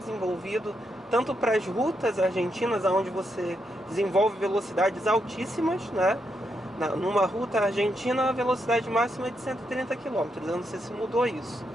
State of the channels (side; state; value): both; normal; correlation 0.81